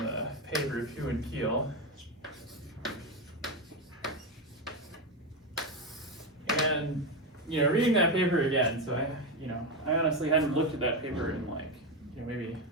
paper of Hu and Keel. And reading that paper again. So I honestly hadn't looked at that paper in maybe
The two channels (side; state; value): both; normal; correlation 0.12